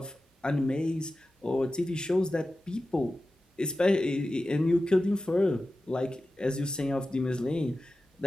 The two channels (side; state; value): both; normal; correlation 0.94